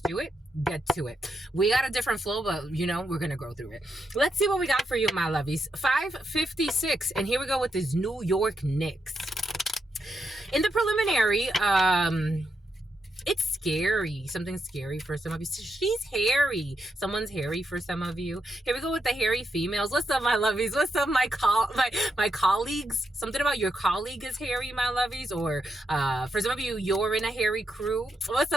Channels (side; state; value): both; normal; correlation 0.82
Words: do it. Get to it. We got a different flow, but you know, we're going to go through it. Let's see what we got for you, my lovies. 5:56. And here we go with this New York Knicks. In the preliminary, it's scary. Something scary for some of you. She's hairy. Someone's hairy for some of you. Here we go with the hairy females. What's up, my lovies? What's up, my colleagues? Something about your colleague is hairy, my lovies. Or for some of you, you're in a hairy crew. What's